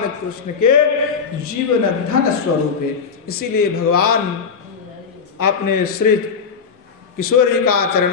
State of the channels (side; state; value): right; quieter; 5.9 dB